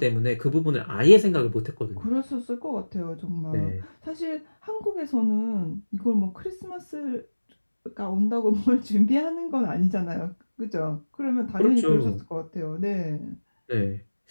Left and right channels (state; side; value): inverted; both; correlation -1.00